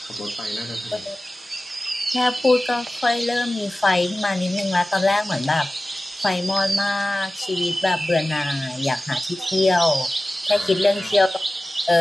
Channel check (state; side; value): normal; both; correlation 0.96